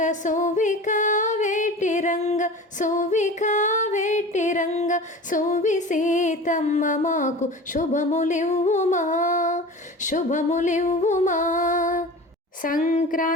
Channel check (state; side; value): normal; both; correlation 0.36